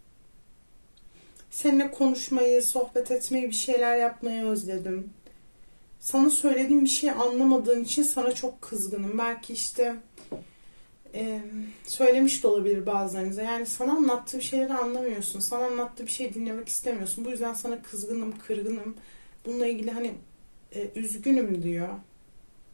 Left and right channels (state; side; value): inverted; both; correlation -1.00